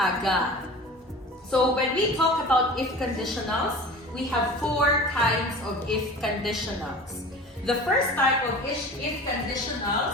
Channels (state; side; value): normal; both; correlation 0.38